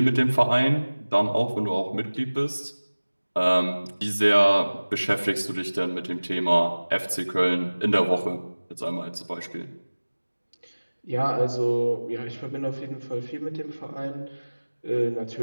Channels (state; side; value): inverted; both; correlation -1.00